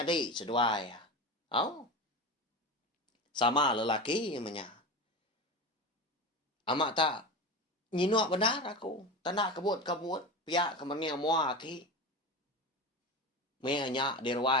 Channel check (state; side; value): normal; both; correlation 0.25